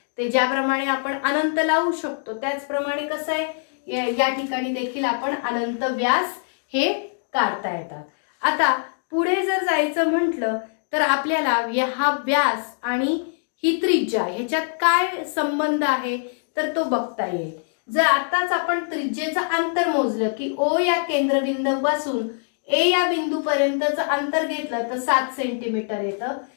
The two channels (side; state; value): right; silent; 63 dB below the other